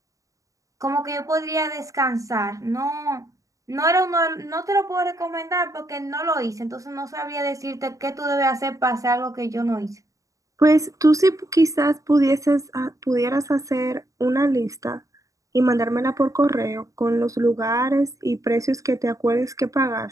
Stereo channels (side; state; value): left; late; 0.16 ms